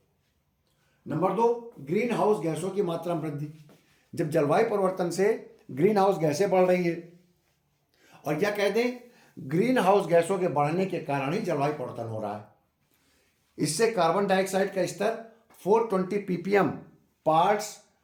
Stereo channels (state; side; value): identical; both; correlation 1.00